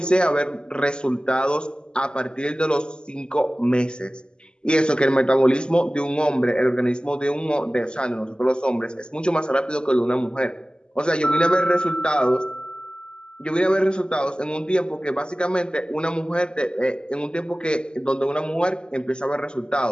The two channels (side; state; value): right; late; 0.049 ms